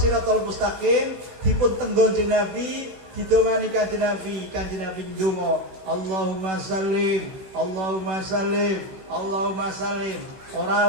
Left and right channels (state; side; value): late; left; 16 ms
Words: mustaqim dipun tenggon dening Nabi, didongani Kanjeng Nabi ndonga Allahumma sallim Allahumma sallim Allahumma sallim.